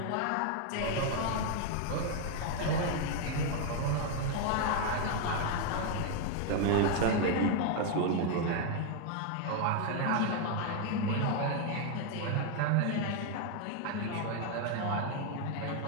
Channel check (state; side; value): different; both; correlation 0.01